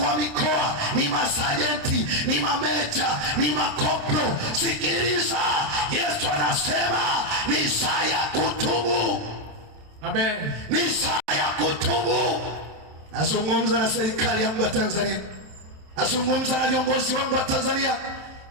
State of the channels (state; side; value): late; left; 27 ms